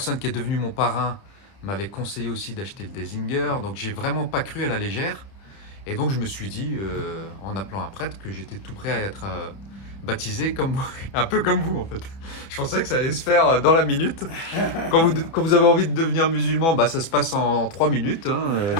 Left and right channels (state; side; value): late; right; 30 ms